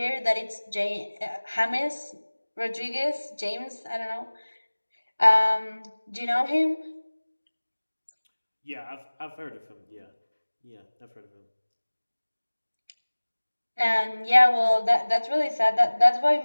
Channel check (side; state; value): both; inverted; correlation -1.00